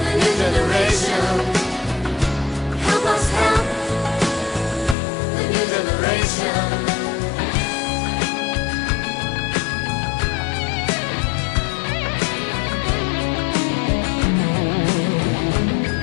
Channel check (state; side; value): drops out; right; at 5.0 s